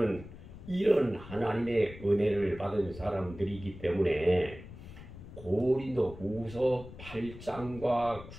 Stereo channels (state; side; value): noise; left; rumble, 15 dB below the sound